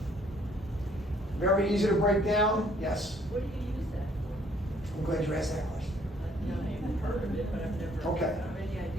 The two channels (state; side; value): normal; both; correlation 0.62